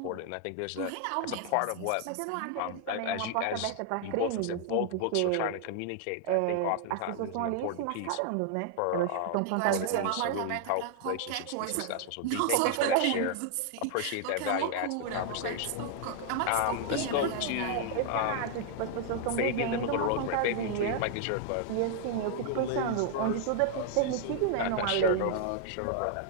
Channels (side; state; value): both; different; correlation 0.00